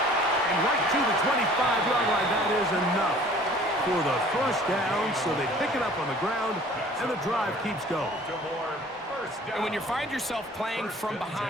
And right to the 25-yard line. That is enough for the first down. So they pick it up on the ground, and the drive keeps going. And when you find yourself playing from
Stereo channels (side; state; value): both; normal; correlation 0.50